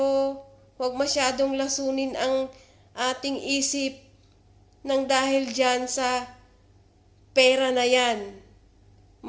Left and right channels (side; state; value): both; identical; correlation 1.00